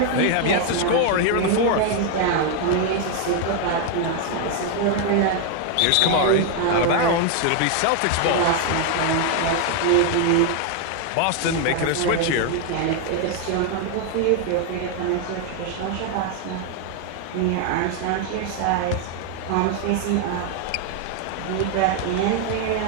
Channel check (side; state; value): both; different; correlation 0.00